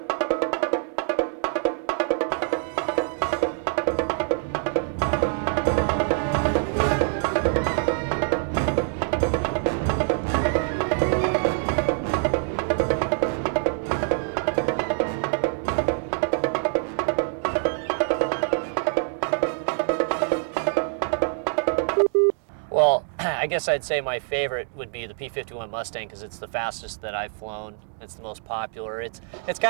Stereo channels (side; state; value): left; silent; 62 dB below the other